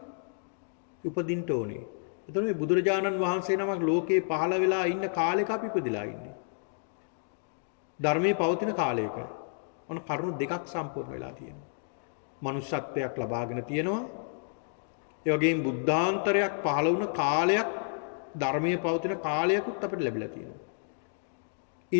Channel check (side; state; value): right; silent; digital silence